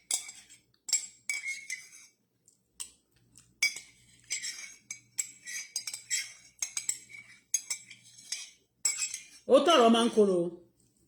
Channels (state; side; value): identical; both; correlation 1.00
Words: ó tọrọ máa ń korò